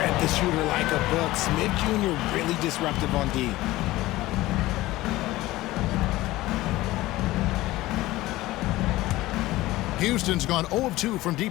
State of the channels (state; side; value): quieter; right; 17.7 dB